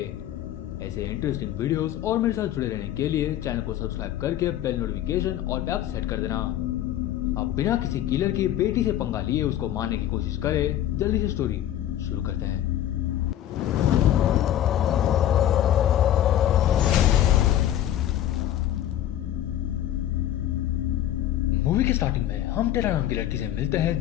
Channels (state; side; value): quieter; right; 12.0 dB